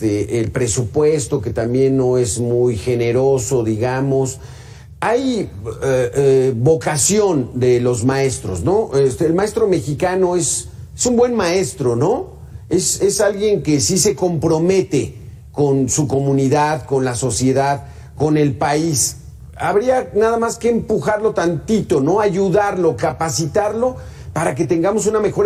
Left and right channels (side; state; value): both; identical; correlation 1.00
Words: presupuesto que también no es muy generoso, digamos. Hay vocación de los maestros, ¿no? El maestro mexicano es un buen maestro, ¿no? Es alguien que sí se compromete con su comunidad, con la sociedad, con el país. Habría nada más que empujarlo tantito, ¿no? Ayudarlo, capacitarlo para que tengamos una mejor